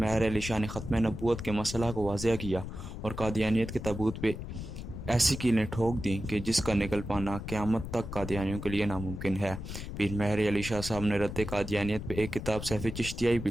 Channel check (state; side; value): noise; left; rumble, 8 dB below the sound